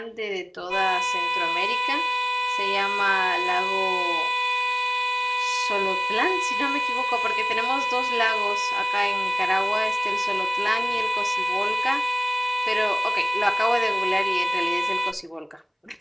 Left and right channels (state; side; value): identical; both; correlation 1.00